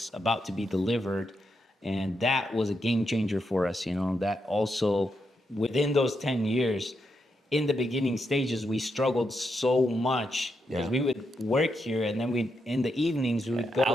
about to be delivered, and that was a game changer for us. You know, that also within those 10 years, in the beginning stages, we struggled so much because we would work here, and then in the evenings we would go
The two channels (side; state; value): both; normal; correlation 0.83